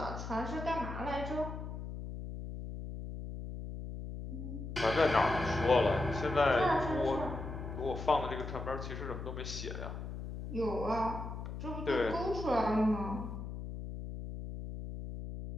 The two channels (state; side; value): noise; left; hum, 7 dB below the sound